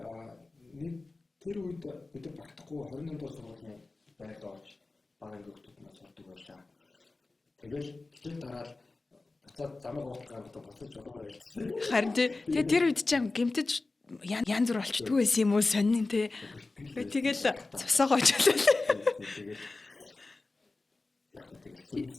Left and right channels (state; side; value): quieter; right; 3.4 dB